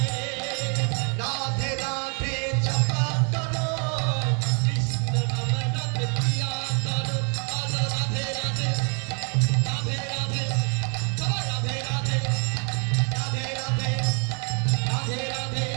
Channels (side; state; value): left; quieter; 37.6 dB